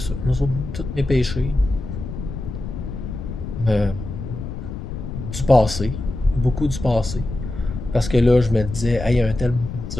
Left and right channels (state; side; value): noise; left; rumble, 8 dB below the sound